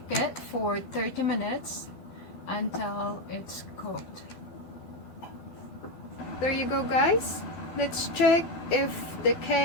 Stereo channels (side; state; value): right; late; 12 ms